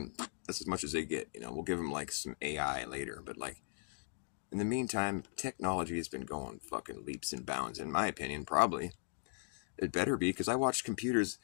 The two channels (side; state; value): right; silent; 52 dB below the other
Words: as much as they get. We'll give them like some AI later, but like, in the meantime, technology has been going fucking leaps and bounds. In my opinion, probably. It better be, because I watched computers